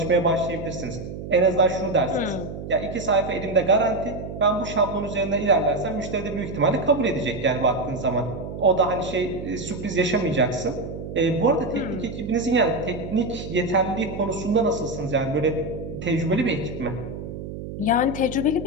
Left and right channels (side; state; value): right; noise; hum, 9 dB below the sound